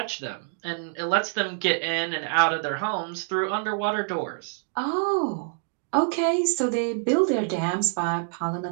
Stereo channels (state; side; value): silent; left; 59 dB below the other